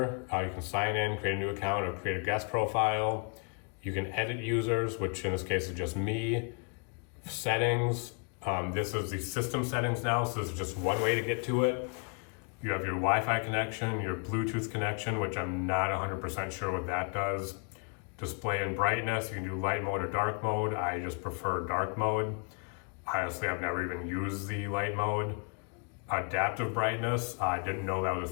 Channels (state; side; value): quieter; right; 38.6 dB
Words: you can sign in, create a new account, or create a guest profile. You can edit users, which in this case is just me. Settings, this is the system settings now, so this is just one way to get to it. You have your Wi-Fi connection, your Bluetooth connection, which I'm not 100% sure what that does. Display and brightness, you can do light mode or dark mode. I just prefer dark mode. Honestly, I've never even used the light mode. Adaptive brightness, I didn't know that was a